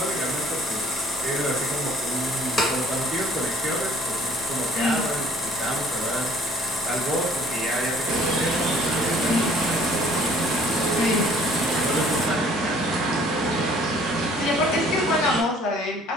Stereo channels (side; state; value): both; normal; correlation 0.56